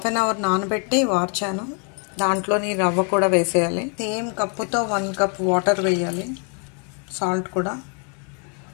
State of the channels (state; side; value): quieter; right; 39.3 dB